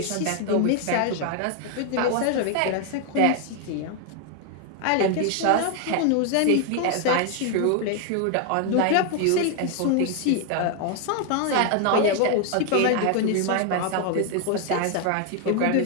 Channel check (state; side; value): different; both; correlation 0.00